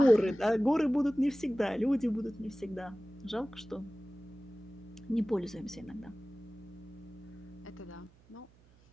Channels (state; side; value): noise; right; hum, 28 dB below the sound